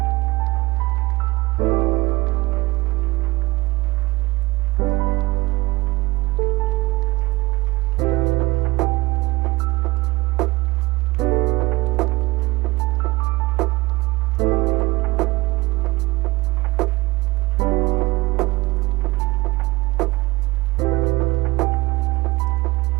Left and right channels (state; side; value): quieter; left; 21.1 dB